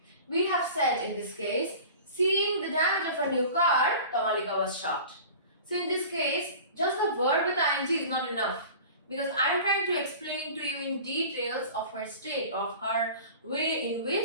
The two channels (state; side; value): inverted; both; correlation -0.40